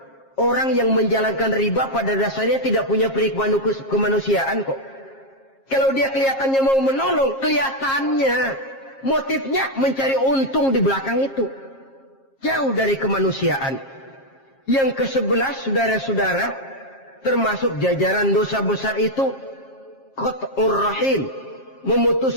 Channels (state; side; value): late; right; 7.4 ms